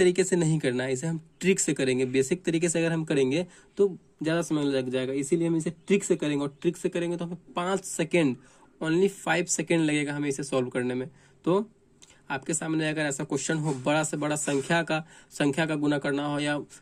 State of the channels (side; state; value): both; identical; correlation 1.00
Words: से नहीं करना है, इसे हम ट्रिक से करेंगे। बेसिक तरीके से अगर हम करेंगे तो ज़्यादा समय लग जाएगा, इसीलिए हम इसे ट्रिक से करेंगे। और ट्रिक से करेंगे तो हमें 5 सेकेंड, ओनली 5 सेकेंड लगेगा हमें इसे सॉल्व करने में। तो आपके सामने अगर ऐसा क्वेश्चन हो, बड़ा से बड़ा संख्या का गुना करना हो, या